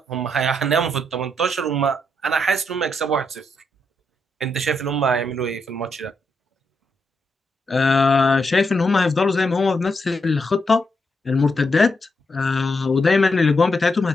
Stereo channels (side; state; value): both; normal; correlation 0.81